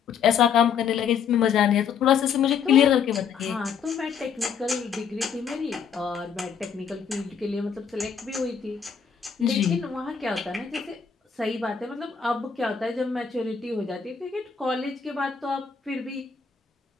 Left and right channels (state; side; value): quieter; right; 6.9 dB